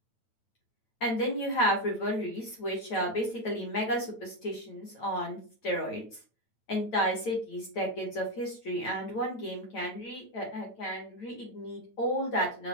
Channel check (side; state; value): right; late; 8.9 ms